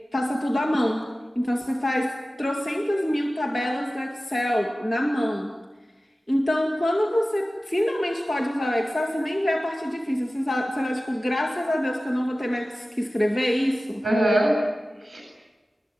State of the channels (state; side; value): normal; both; correlation 0.96